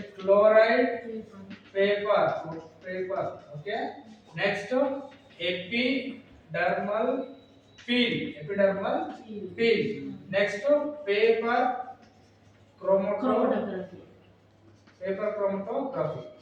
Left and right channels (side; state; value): both; identical; correlation 1.00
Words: chloride paper, paper. Okay. Next epidermal peel. Next paper chromatography, chromatography.